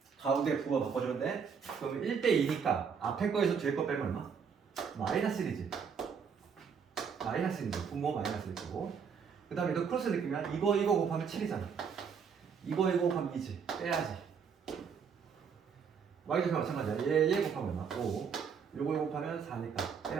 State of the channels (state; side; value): quieter; left; 6.5 dB